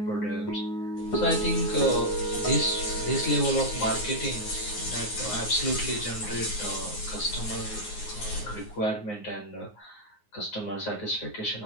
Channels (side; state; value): right; late; 9.6 ms